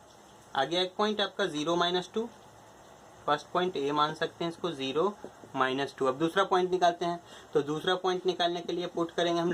आ गया एक पॉइंट आपका 0 -2। फर्स्ट पॉइंट ए मान सकते हैं इसको, 0 -2। अब दूसरा पॉइंट निकालते हैं। तो दूसरा पॉइंट निकालने के लिए पुट करेंगे हम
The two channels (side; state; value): both; identical; correlation 1.00